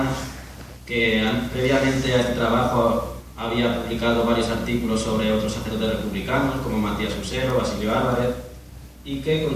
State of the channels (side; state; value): both; identical; correlation 1.00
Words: que previamente a este trabajo había publicado varios artículos sobre otros sacerdotes republicanos, como Matías Usero, Basilio Álvarez, y que